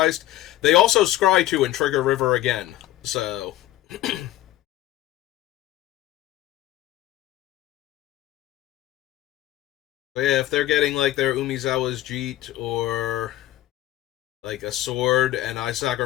they also scry to and trigger River again. So but yeah, if they're getting like their Umizawa's Jeet or like a sword and I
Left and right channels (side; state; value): right; quieter; 14.4 dB